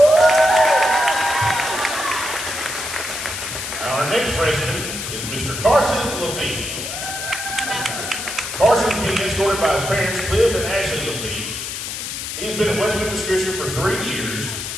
Our next freshman is Mr. Carson Lafitte. Carson is being escorted by his parents, Cliff and Ashley Lafitte. He has been at West Memphis Christian for 3 years.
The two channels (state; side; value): noise; left; hiss, 6 dB below the sound